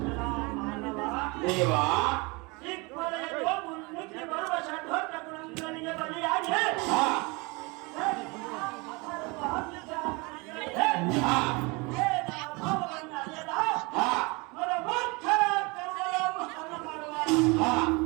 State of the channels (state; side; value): quieter; left; 27.2 dB